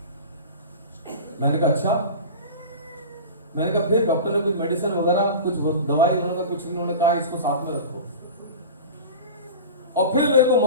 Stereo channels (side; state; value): both; inverted; correlation -0.32